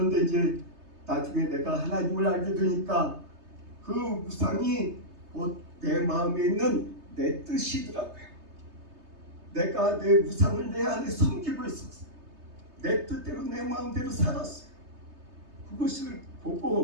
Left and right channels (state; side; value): late; left; 3.3 ms